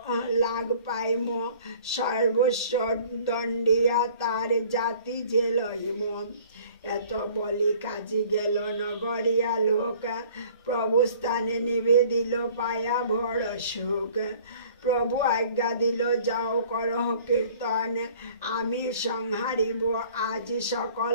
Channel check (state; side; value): inverted; both; correlation -0.52